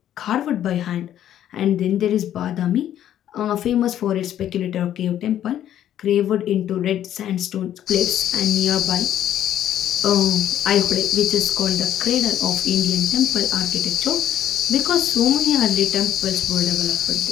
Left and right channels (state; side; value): quieter; right; 11.2 dB